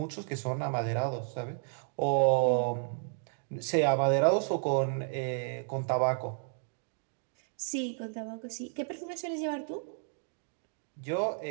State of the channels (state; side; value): silent; left; 56 dB below the other